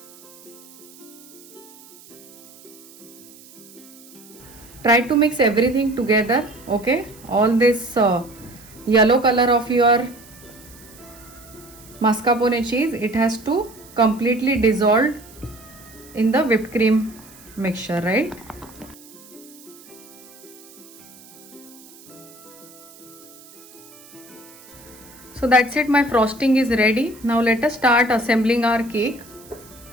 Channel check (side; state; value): right; noise; hiss, 22 dB below the sound